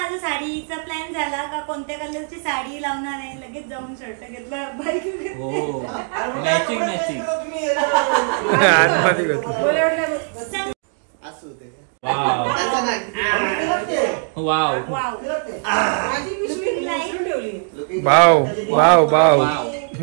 साडीचा प्लॅन झाला का कोणत्या कलरची साडी लावणार आहे, लगेच जाऊन शर्ट घेतला, bike matching matching. Wow wow wow wow.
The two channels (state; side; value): silent; left; 55 dB below the other